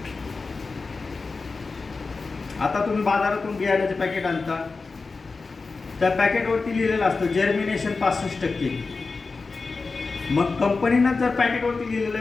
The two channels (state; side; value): quieter; right; 4.1 dB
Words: आता तुम्ही बाजारातून बियाण्याचे पॅकेट आणता, त्या पॅकेटवरती लिहिलेलं असतं जर्मिनेशन 65%. मग कंपनीनं जर पॅकेटवरती लिहिलेलं